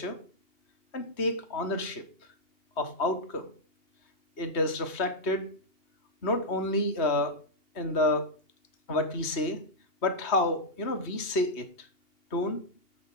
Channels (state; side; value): late; right; 3.1 ms